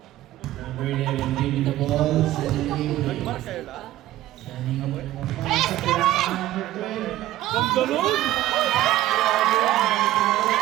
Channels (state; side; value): quieter; left; 14.7 dB